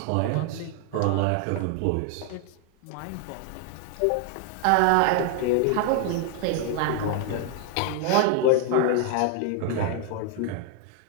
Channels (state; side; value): different; both; correlation 0.00